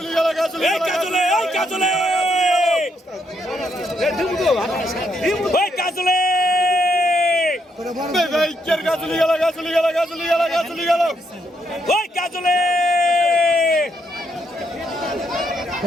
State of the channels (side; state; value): both; normal; correlation 0.76